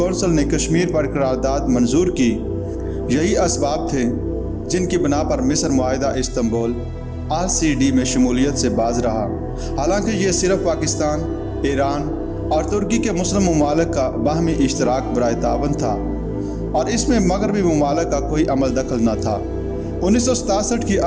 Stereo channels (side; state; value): both; identical; correlation 1.00